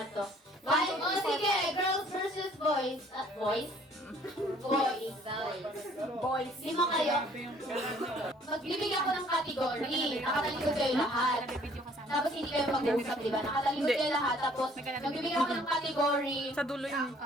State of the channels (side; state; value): both; normal; correlation 0.58